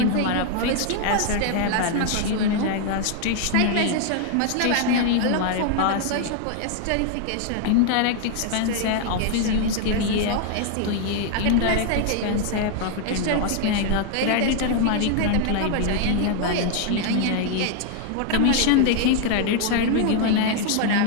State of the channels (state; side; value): different; both; correlation 0.00